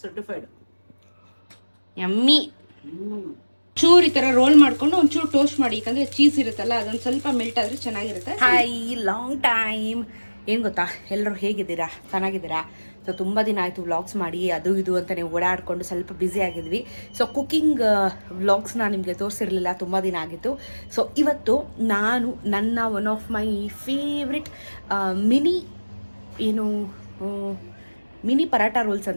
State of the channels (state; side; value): inverted; both; correlation -1.00